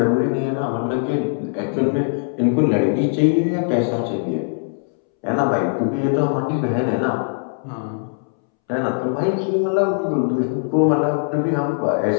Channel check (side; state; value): right; silent; 65 dB below the other